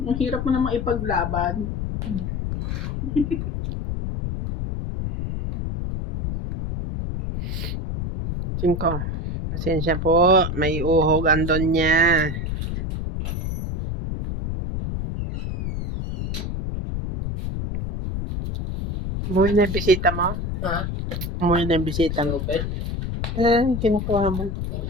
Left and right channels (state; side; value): noise; left; rumble, 3 dB below the sound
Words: Ang hirap mo namang ipaglaban. Cinco. Pasensya po, may uhog andon niya. Umuwi na yung bisita mo? Ha? Umuwi na yung bisita mo? Open? Kinukuha mo.